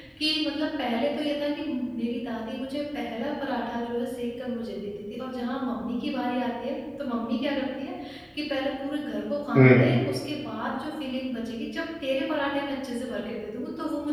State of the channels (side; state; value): both; identical; correlation 1.00